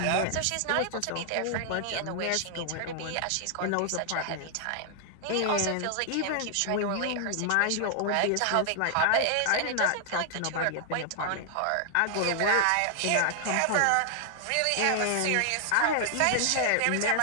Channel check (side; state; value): both; different; correlation 0.00